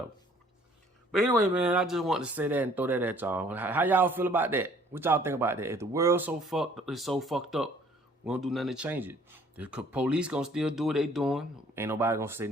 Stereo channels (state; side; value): normal; both; correlation 0.57